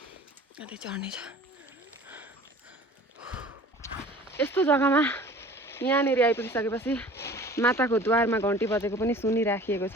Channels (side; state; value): both; normal; correlation 0.45